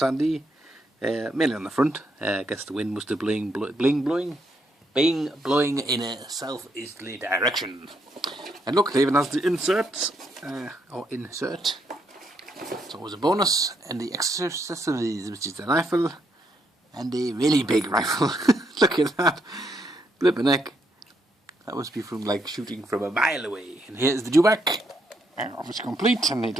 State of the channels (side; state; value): both; normal; correlation 0.76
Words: mainly on the front. I guess the wind must have blowing in a southeasterly direction. And look, it even has the inserts, or insert. It's always a bonus, and the accessories, which is the rifle, and a really big rifle. Look at that, flippin' heck. That must be from like shooting from a mile away. And here's the Dewback, obviously complete, and he